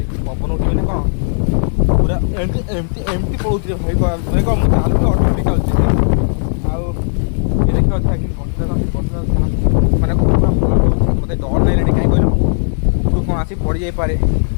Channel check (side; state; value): right; silent; digital silence